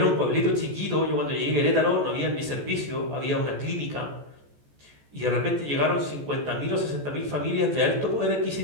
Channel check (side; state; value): left; late; 14 ms